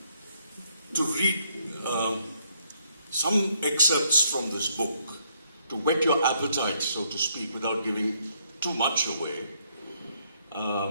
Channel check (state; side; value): inverted; both; correlation -0.70